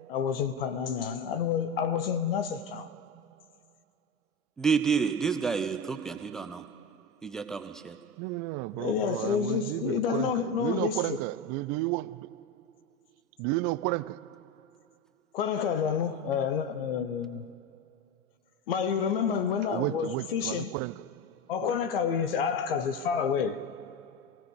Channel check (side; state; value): both; normal; correlation 0.20